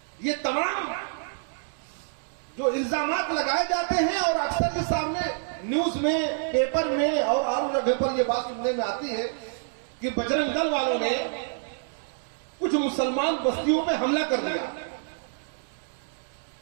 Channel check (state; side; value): silent; left; 60 dB below the other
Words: ये तमाम जो इल्जामात लगाए जाते हैं और अक्सर के सामने न्यूज में, पेपर में और आम जगह पर ये बात सुनने में आती है कि बजरंग दल वालों ने कुछ मुसलमान बस्तियों पे हमला कर दिया,